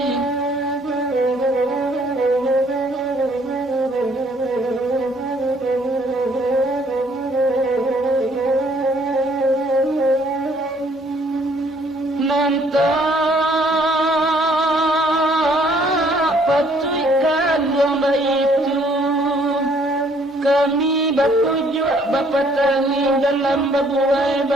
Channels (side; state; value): both; normal; correlation 0.63